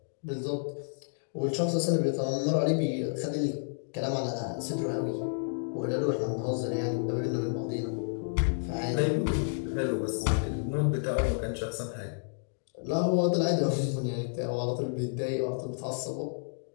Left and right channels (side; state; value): right; silent; digital silence